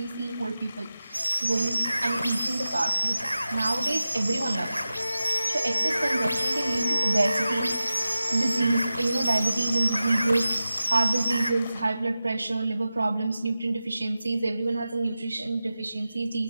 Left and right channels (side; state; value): both; inverted; correlation -0.94